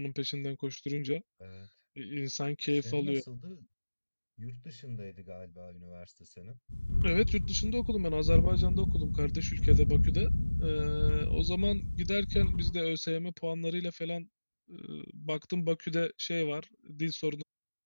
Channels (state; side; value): inverted; both; correlation -1.00